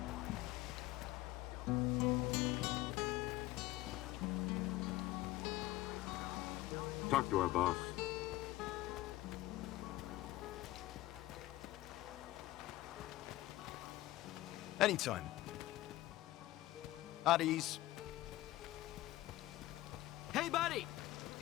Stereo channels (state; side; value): quieter; right; 16.8 dB